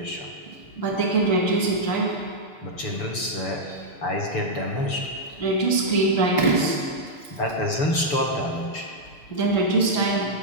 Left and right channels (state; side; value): late; right; 7.0 ms